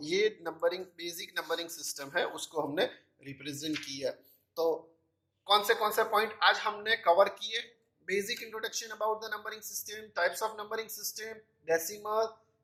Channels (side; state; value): both; identical; correlation 1.00